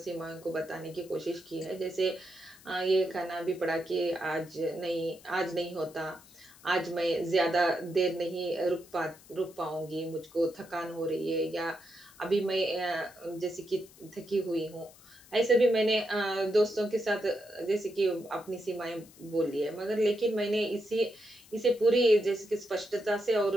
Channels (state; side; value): noise; left; hiss, 23 dB below the sound